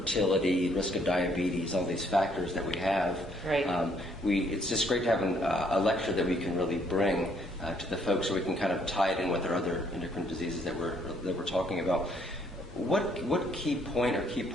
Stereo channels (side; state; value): both; normal; correlation 0.67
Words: risk of diabetes, all these factors that we have, right. It's just great to have a lecture that we can really bring to the folks so we can kind of tie it in with our other endocrine diseases that we're talking about. What key point or key